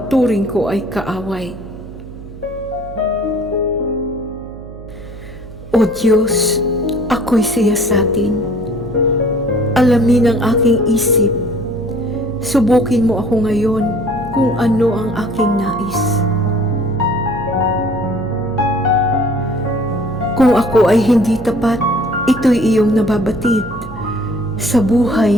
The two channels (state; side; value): noise; right; hum, 15 dB below the sound